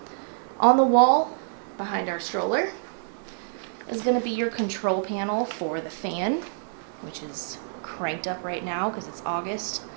On the wall, behind our stroller, is going to be your control panel for the fan, which is cranked up right now because it's August,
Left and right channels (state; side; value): silent; left; 60 dB below the other